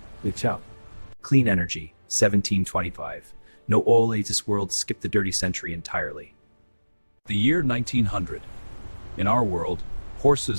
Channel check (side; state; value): both; inverted; correlation -1.00